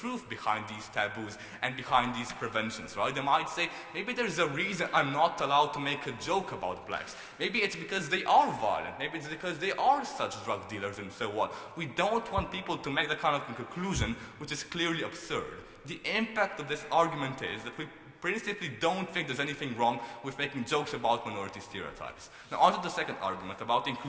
behind these taboos and behind these preventions, right? They might say, maybe there's a reason I'm not allowed to make a joke about blacks. Maybe it's because they are violent. Maybe it's because they are such drug dealers and so on. We don't want people to make that kind of conclusion, which is clearly absurd. The impact of this argument is that we principally don't think there's anything wrong with making jokes about minority stereotypes. Now on to the second argument about the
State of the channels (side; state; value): both; identical; correlation 1.00